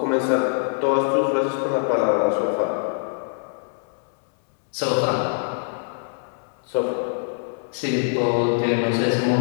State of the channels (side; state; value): right; silent; digital silence